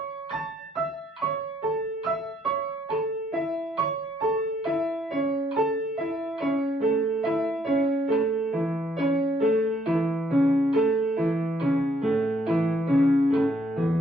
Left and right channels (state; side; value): normal; both; correlation 0.68